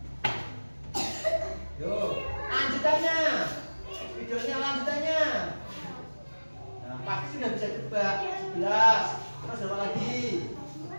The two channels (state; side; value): inverted; both; correlation -1.00